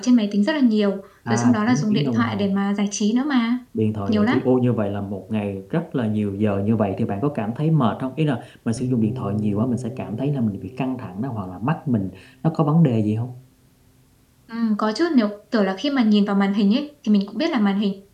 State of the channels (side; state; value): both; identical; correlation 1.00